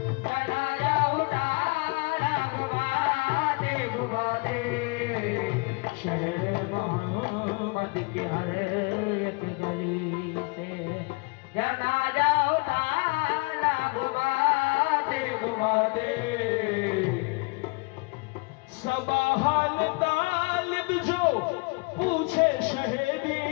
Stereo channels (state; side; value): quieter; right; 29.7 dB